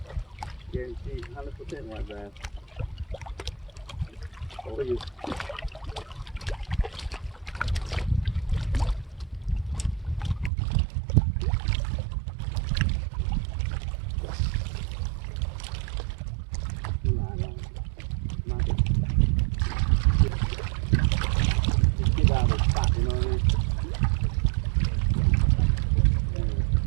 guarantee 100% white bass. For you. Get out of the spot, you know what I mean?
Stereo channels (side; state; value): left; drops out; at 10.5 s